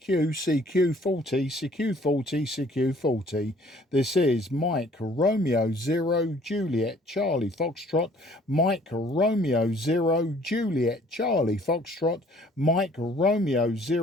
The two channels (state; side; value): normal; both; correlation 0.57